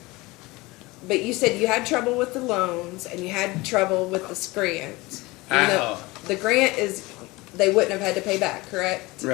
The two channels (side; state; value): right; quieter; 22.1 dB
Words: But you said you had trouble with the loans and you had trouble with the grant. Even though the grant is, they wouldn't have had to pay back, correct?